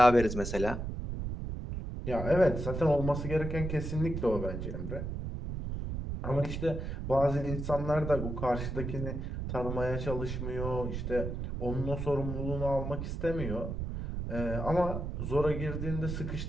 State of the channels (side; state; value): right; noise; rumble, 4 dB below the sound